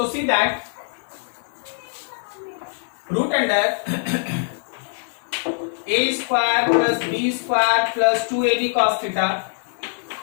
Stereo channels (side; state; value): right; silent; 64 dB below the other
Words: see that root under a square plus b square plus 2 a b cos theta